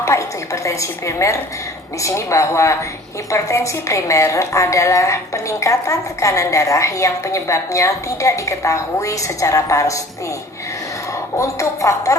itu hipertensi primer? Di sini bahwa hipertensi primer adalah peningkatan tekanan darah yang penyebabnya tidak diketahui secara pasti. Untuk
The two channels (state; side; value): normal; both; correlation 0.48